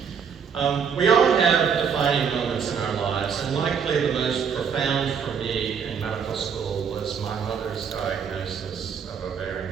We all have defining moments in our lives, and likely the most profound for me in medical school was my mother's diagnosis of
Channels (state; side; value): quieter; left; 6.8 dB